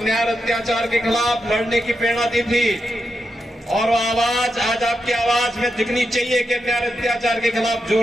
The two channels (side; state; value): both; normal; correlation 0.86